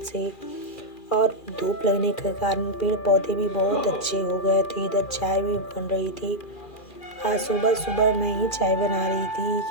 से, और धूप लगने के कारण पेड़ पौधे भी बहुत अच्छे हो गए थे। इधर चाय भी बन रही थी। आज सुबह सुबह मैं ही चाय बना रही थी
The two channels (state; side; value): late; right; 2.4 ms